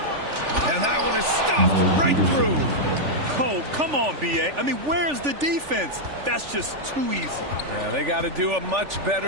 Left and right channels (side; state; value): left; late; 3.4 ms